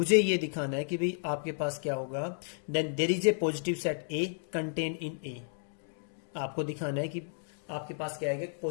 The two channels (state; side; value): silent; right; digital silence